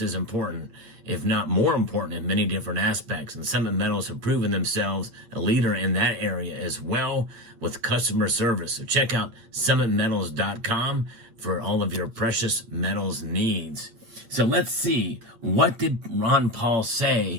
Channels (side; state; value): left; late; 8.7 ms